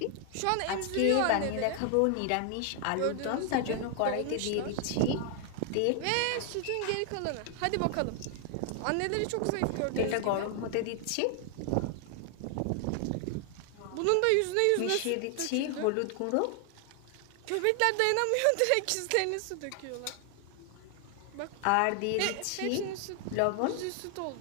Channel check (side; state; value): both; different; correlation 0.00